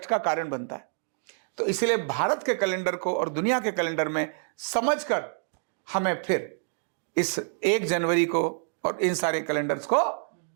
का कारण बनता है। तो इसलिए भारत के कैलेंडर को और दुनिया के कैलेंडर में समझकर हमें फिर इस 1 जनवरी को और इन सारे कैलेंडर्स को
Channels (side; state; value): left; silent; digital silence